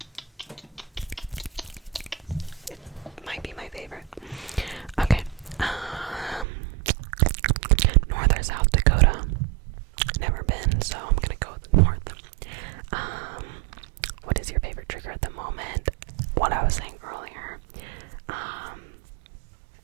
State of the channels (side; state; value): left; drops out; at 6.5 s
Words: It might be my favorite. Okay. North or South Dakota? Never been, so I'm gonna go with North. What is your favorite trigger at the moment? What I was saying earlier.